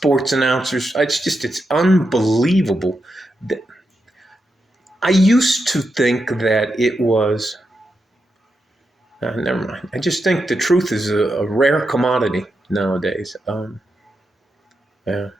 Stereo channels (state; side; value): normal; both; correlation 0.86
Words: announcers, it's unbelievable. I used to think that it was, never mind. I just think the truth is a rare commodity nowadays. Yeah,